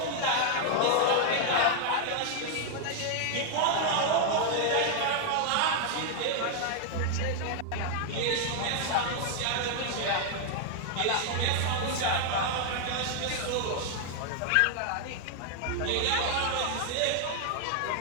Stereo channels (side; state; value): both; different; correlation 0.00